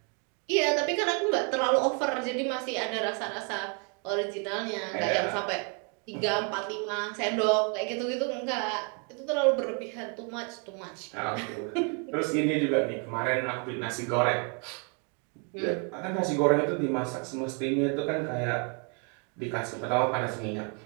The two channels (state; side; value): quieter; left; 37.2 dB